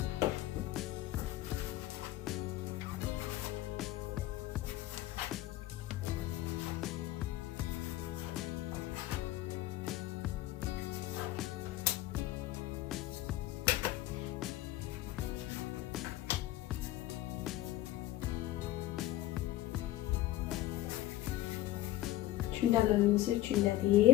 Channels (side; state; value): right; quieter; 15.3 dB